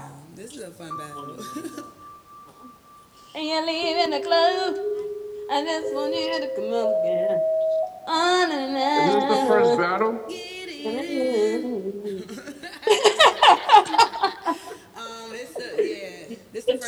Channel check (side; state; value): both; identical; correlation 1.00